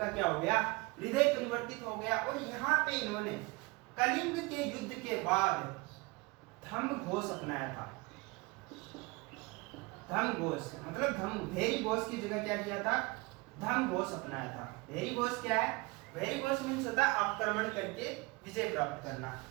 क्या हो गया, हृदय परिवर्तित हो गया। और यहाँ पे इन्होंने कलिंग के युद्ध के बाद धम्म घोष अपनाया था। धम्म घोष मतलब भेरी घोष की जगह क्या किया था, धम्म घोष अपनाया था। भेरी घोष क्या है, भेरी घोष मीन्स होता है आक्रमण करके विजय प्राप्त करना,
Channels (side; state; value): left; quieter; 25.8 dB